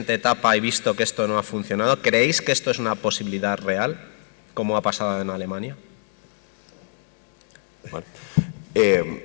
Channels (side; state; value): right; silent; digital silence